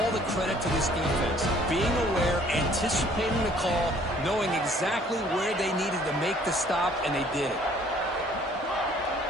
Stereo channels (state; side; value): normal; both; correlation 0.58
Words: the credit to this defense. Being aware, anticipating the call, knowing exactly where they needed to make the stop, and they did it.